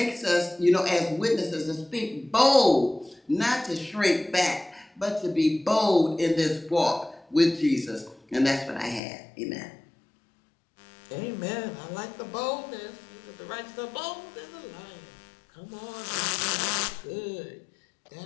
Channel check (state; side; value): drops out; right; at 9.0 s